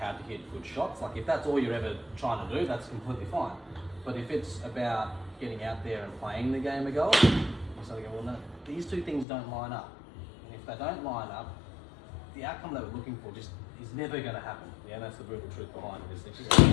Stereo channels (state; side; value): drops out; right; at 9.2 s